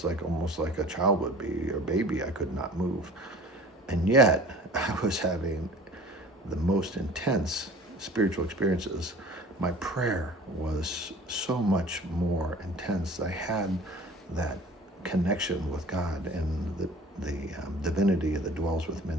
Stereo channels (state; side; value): normal; both; correlation 0.45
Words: almost like a child would be, or baby. I could not move. And yet I was having the most intense spiritual experiences. My prayer was so much more intense. I had that connection with God and the divinity that dwells within